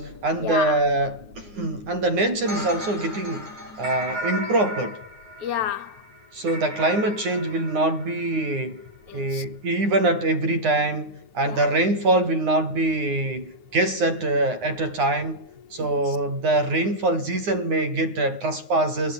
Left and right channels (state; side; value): late; left; 9.7 ms